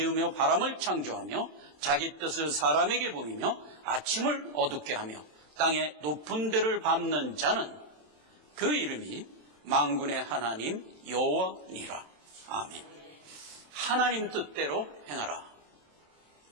바람을 창조하며 자기 뜻을 사람에게 보이며 아침을 어둡게 하며 땅의 높은 데를 밟는 자는 그 이름이 만군의 하나님 여호와니라. 아멘. 하나님 뜻대로 행하라.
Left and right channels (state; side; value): late; left; 27 ms